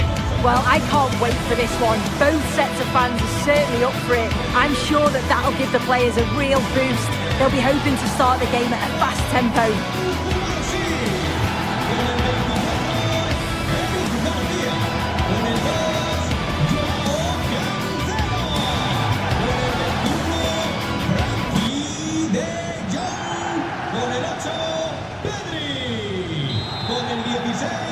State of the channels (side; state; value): both; identical; correlation 1.00